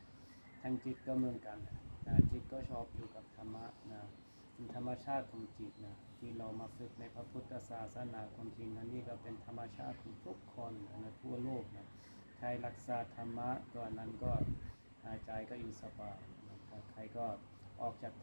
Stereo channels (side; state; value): both; inverted; correlation -1.00